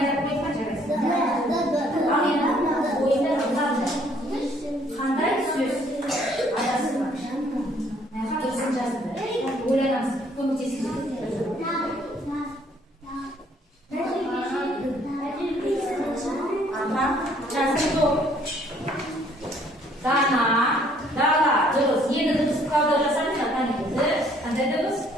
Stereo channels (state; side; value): normal; both; correlation 0.63